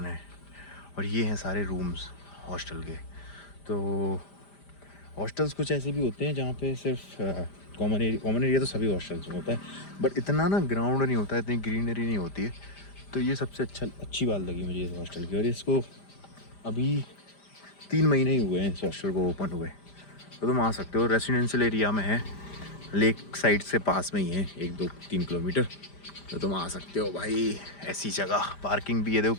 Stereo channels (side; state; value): right; late; 5.0 ms